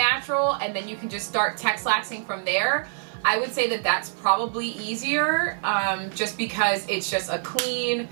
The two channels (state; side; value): silent; left; 62 dB below the other